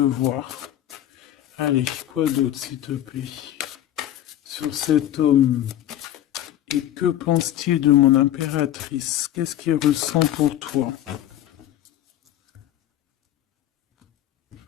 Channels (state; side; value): quieter; right; 12.3 dB